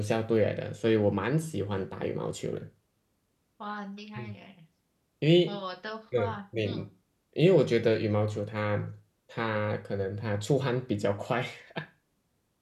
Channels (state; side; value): identical; both; correlation 1.00